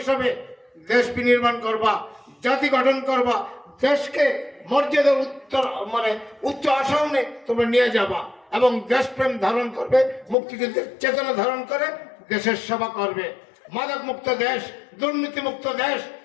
হিসাবে দেশ বিনির্মাণ করবা, জাতি গঠন করবা, দেশকে মর্যাদার উচ্চ আসনে তোমরা নিয়ে যাবা এবং দেশপ্রেম ধারণ করবে, মুক্তিযুদ্ধের চেতনা ধারণ করে দেশের সেবা করবে। মাদক মুক্ত দেশ, দুর্নীতি মুক্ত দেশ,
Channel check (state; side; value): drops out; right; at 10.4 s